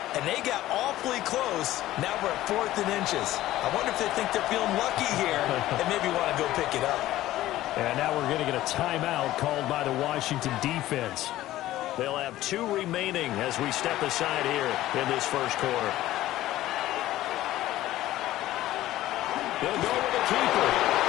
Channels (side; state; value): right; quieter; 15.0 dB